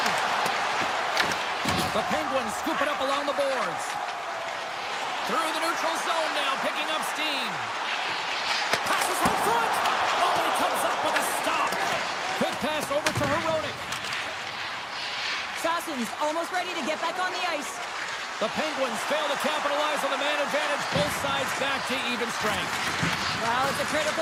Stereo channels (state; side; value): identical; both; correlation 1.00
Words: The Penguins scoop it up along the boards. Through the neutral zone now, picking up steam. Passes home front. Oh, he comes up with a stop. Quick pass over to Hronek. Sasson's almost ready to get back on the ice. The Penguins fail to capitalize on the man advantage. Both sides back to even strength. Well, it's a